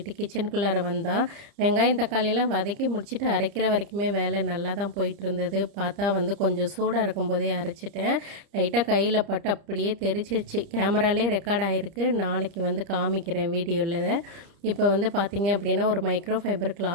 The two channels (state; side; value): late; left; 30 ms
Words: கிச்சனுக்குள்ளார வந்தால் வெங்காயம் தக்காளியெல்லாம் வதக்கி முடிச்சுட்டு அரைக்கிற வரைக்குமே வேலை நல்லா தான் போயிட்டு இருந்தது. பார்த்தா கொஞ்சம் சூடாக இருக்கும்போதே அரைச்சிட்டேன். லைட்டாக கையில் பட்டு அப்படியே தெரிச்சிருச்சு. கேமராலே ரெக்கார்ட் ஆகிருக்கு. நாளைக்கு காமிக்கிறேன் வீடியோவில். இப்போ பார்த்தீங்க அப்படின்னா ஒரு மைக்ரோ ஃபைபர்